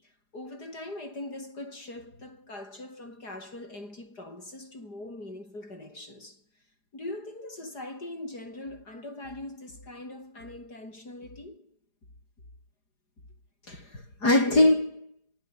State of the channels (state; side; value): late; right; 4.9 ms